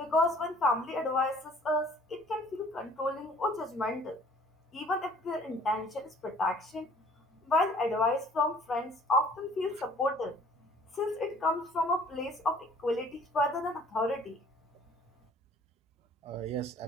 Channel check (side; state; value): both; normal; correlation 0.55